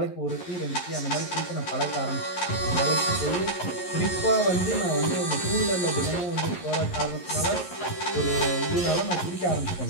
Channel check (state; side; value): late; right; 11 ms